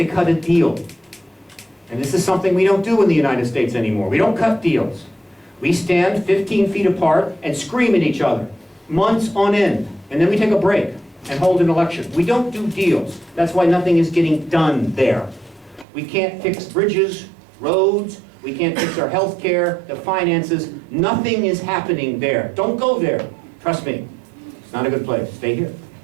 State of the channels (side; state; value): left; drops out; at 15.9 s